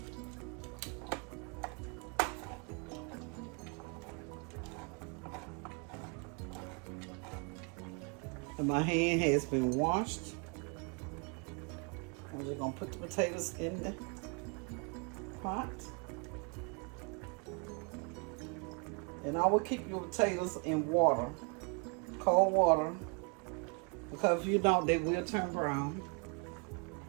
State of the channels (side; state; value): left; quieter; 34.7 dB